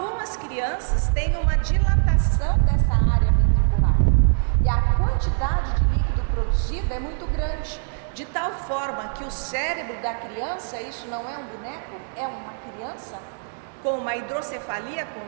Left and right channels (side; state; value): left; silent; 63 dB below the other